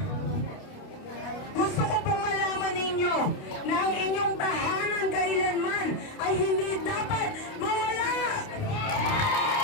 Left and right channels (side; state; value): right; late; 29 ms